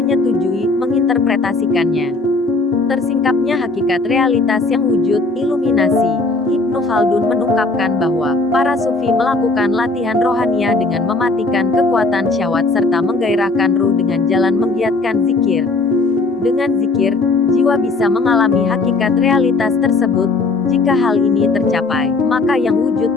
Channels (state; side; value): quieter; right; 3.4 dB